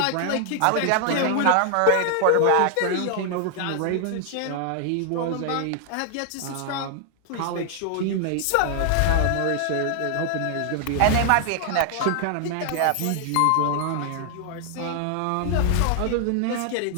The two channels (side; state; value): both; different; correlation 0.00